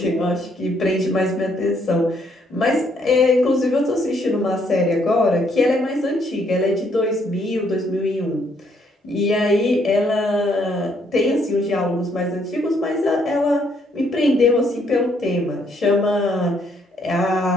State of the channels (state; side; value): normal; both; correlation 0.70